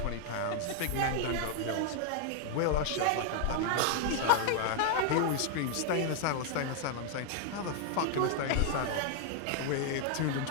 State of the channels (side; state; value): both; different; correlation 0.00